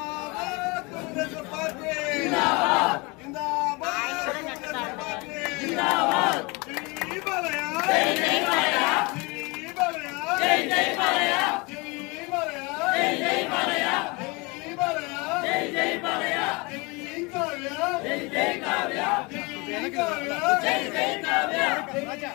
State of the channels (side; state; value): right; quieter; 27.1 dB